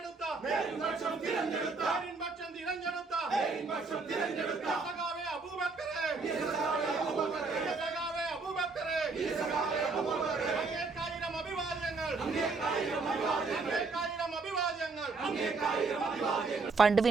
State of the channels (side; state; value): left; quieter; 4.1 dB